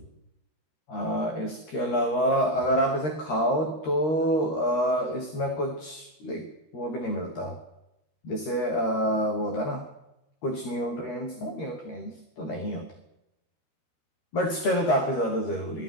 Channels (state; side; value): late; right; 13 ms